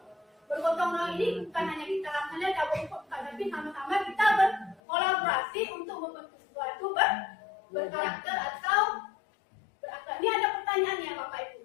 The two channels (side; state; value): right; drops out; at 4.8 s